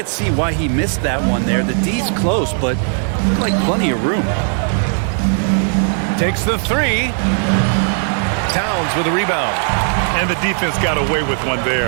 see why he missed that one there. The D's close, but like plenty of room. Takes the 3. Towns with a rebound. And the defense got away with one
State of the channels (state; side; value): silent; left; 60 dB below the other